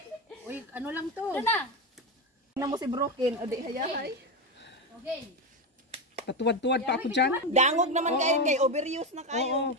Uy, ano lang to? Na. Tingnan mo si Broken. O di hayahay. Okay. Patuwad-tuwad pa ako dyan. Dangog naman kayo kay overuse na kayo. Oo.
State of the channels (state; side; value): normal; both; correlation 0.13